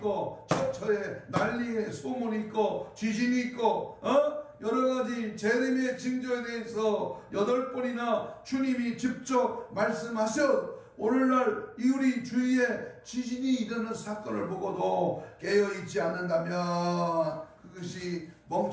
처처에 난리에 소문이 있고, 지진이 있고, 여러가지 재림의 징조에 대해서 8번이나 주님이 직접 말씀하셔. 오늘날 우리 주위에 지진이 일어나는 사건을 보고도 깨어있지 않는다면 그것이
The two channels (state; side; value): identical; both; correlation 1.00